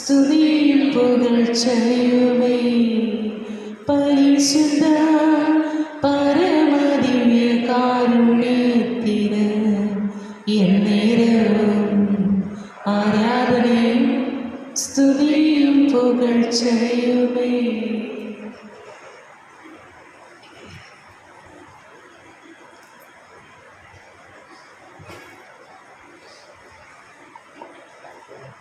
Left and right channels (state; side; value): identical; both; correlation 1.00